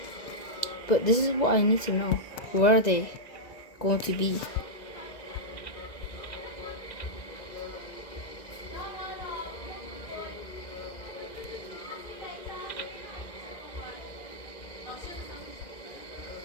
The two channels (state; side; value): late; right; 2.0 ms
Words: But this is what I need to know. Where are they going to be?